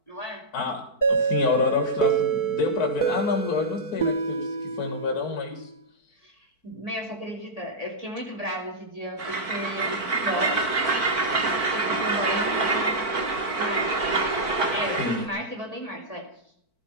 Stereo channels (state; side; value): late; right; 4.5 ms